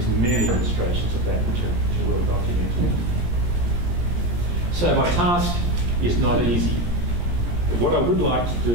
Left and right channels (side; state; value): left; late; 17 ms